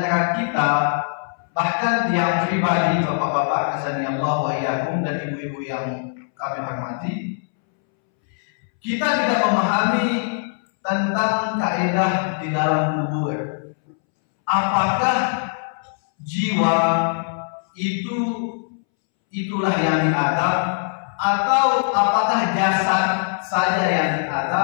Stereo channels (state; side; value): silent; right; 65 dB below the other